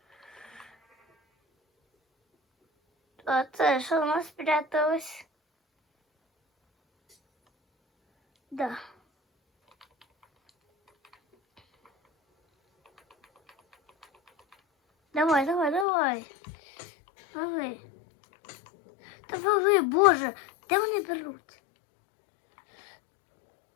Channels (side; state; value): right; drops out; at 15.9 s